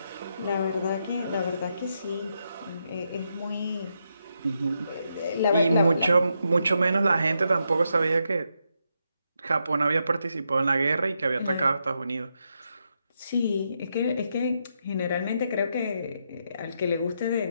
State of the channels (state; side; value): inverted; both; correlation -0.82